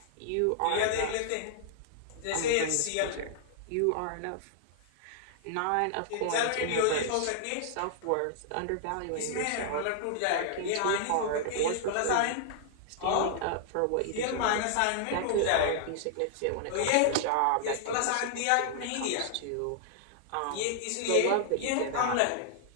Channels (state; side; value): different; both; correlation -0.01